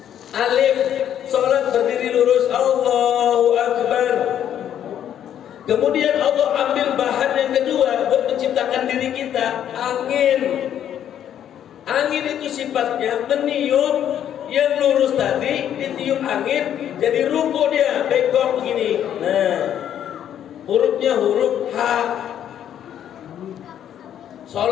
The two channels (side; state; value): right; quieter; 10.1 dB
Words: Alif, sholat berdiri lurus, Allahu Akbar. Kemudian Allah ambil bahan yang kedua buat menciptakan diri kita, angin. Angin itu sifatnya meniup, yang lurus tadi ditiup angin jadi ruku dia, bengkok begini. Nah, hurufnya huruf H.